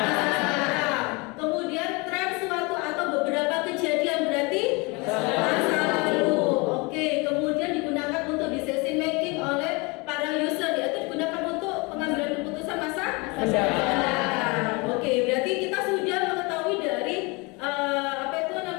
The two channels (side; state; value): right; quieter; 27.7 dB